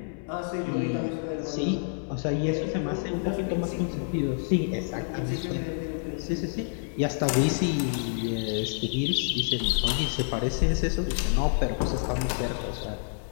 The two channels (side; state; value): right; silent; 59 dB below the other